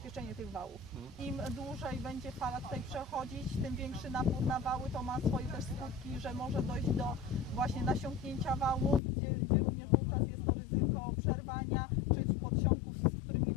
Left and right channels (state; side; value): drops out; right; at 9.0 s